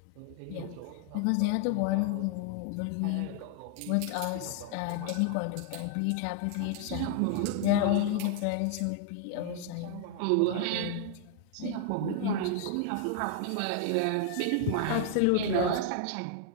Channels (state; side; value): different; both; correlation 0.00